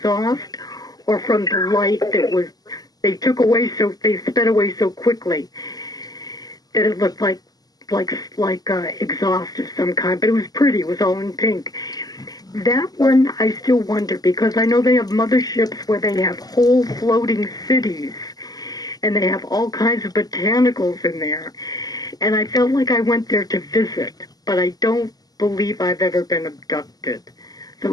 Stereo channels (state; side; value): late; right; 0.18 ms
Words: or from the light that was, they sped away so quickly that it looked like exhaust of some kind, but it was pretty. It was all in pink. That one I still wonder, because I know they have motherships where they have whole floating cities, and they have all kinds of botanicals in there. And I felt like I went there to visit, but I don't believe I've ever been abducted. So